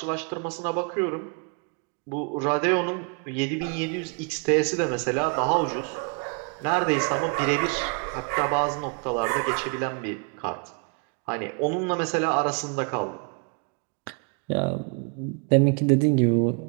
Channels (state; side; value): quieter; left; 35.8 dB